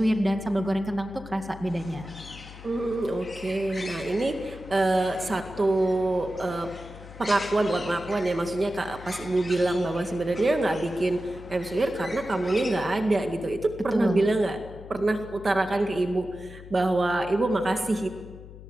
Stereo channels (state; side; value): noise; left; hum, 16 dB below the sound